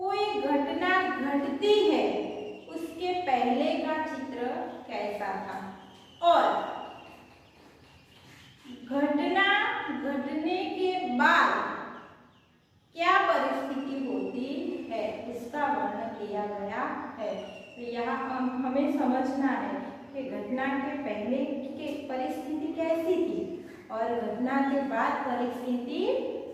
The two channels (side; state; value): both; identical; correlation 1.00